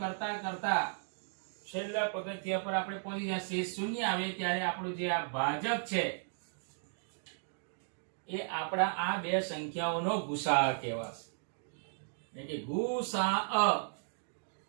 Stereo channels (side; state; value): left; silent; digital silence